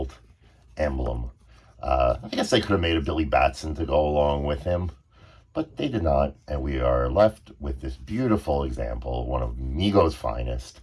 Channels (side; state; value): both; identical; correlation 1.00